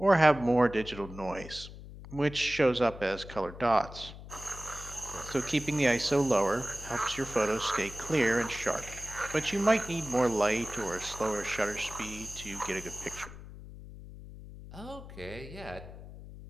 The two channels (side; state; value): left; noise; hum, 14 dB below the sound